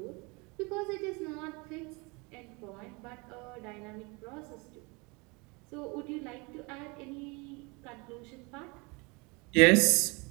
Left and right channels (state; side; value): quieter; left; 28.2 dB